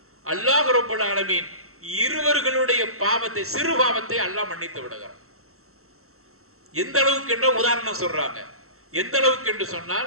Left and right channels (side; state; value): left; late; 0.63 ms